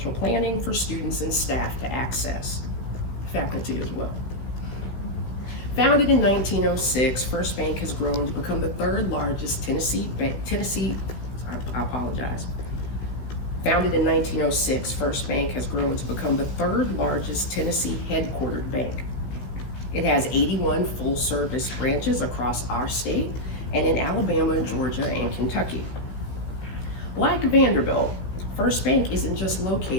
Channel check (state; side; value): late; right; 16 ms